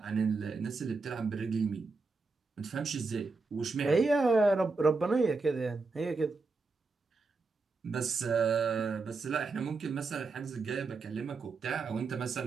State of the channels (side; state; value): left; quieter; 4.0 dB